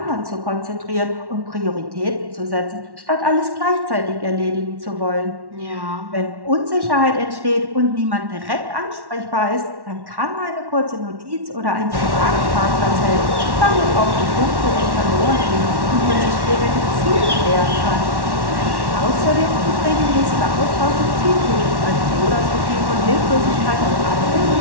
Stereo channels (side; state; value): left; late; 1.1 ms